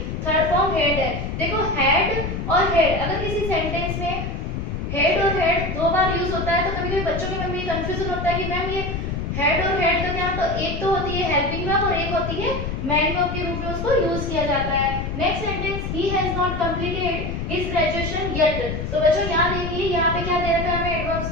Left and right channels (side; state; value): left; noise; rumble, 4 dB below the sound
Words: थर्ड फॉर्म हेड है। देखो हेड और हेड अगर किसी सेंटेंस में हेड और हेड दो बार यूज होता है तो कभी कभी बच्चों के मन में कंफ्यूजन होता है कि मैम ये हेड और हेड का क्या, तो एक तो होती है हेल्पिंग वर्ब और एक होती है मैन वर्ब के रूप में उसको यूज किया जाता है। Next sentence, he has not completed his graduation yet. तो बच्चों यहाँ देखिए, यहाँ पे क्या दे रखा है हमें एडवर्ब्स